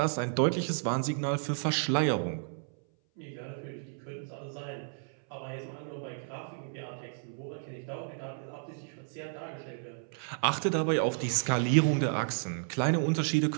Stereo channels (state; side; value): silent; left; 56 dB below the other